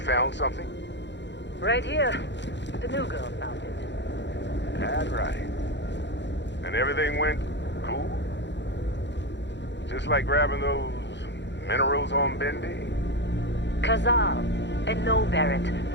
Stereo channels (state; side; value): late; right; 0.52 ms